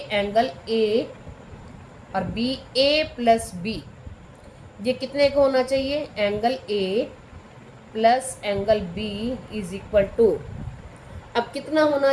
एंगल ए और बी, ए प्लस बी, ये कितने का होना चाहिए? Angle A plus angle B is equal to, अब कितना होना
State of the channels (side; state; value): both; identical; correlation 1.00